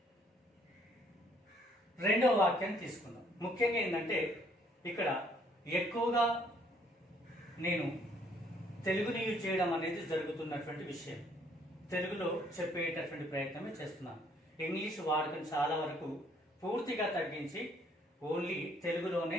రెండవ వాక్యాన్ని తీసుకుందాం. ముఖ్యంగా ఏంటంటే ఇక్కడ ఎక్కువగా నేను తెలుగుని యూజ్ చేయడం అనేది జరుగుతున్నటువంటి విషయం. తెలుగులో చెప్పేటటువంటి ప్రయత్నమే చేస్తున్నాను. ఇంగ్లీష్ వాడకం చాలా వరకు పూర్తిగా తగ్గించి ఓన్లీ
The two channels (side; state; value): both; normal; correlation 0.64